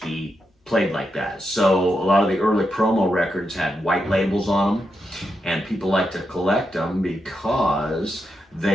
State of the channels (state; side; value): normal; both; correlation 0.85